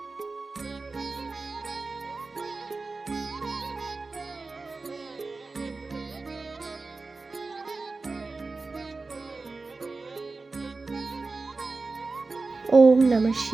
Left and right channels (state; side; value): quieter; left; 3.8 dB